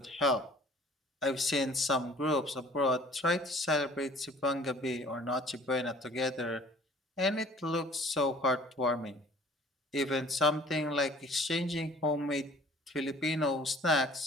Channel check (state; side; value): normal; both; correlation 0.51